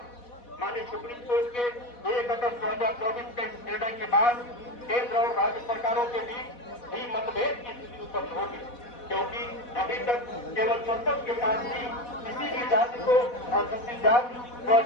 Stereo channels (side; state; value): right; late; 4.1 ms